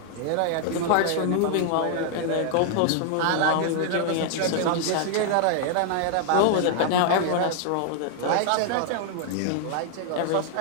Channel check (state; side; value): different; both; correlation 0.00